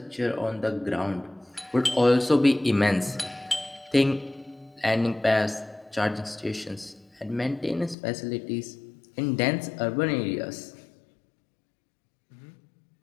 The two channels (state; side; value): drops out; right; at 8.0 s